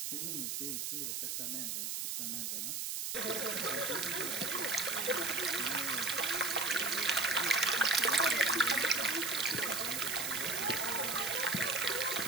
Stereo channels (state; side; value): noise; right; hiss, 2 dB below the sound